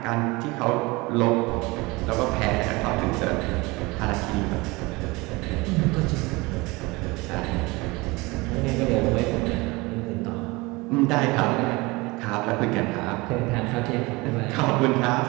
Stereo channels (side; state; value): left; quieter; 23.6 dB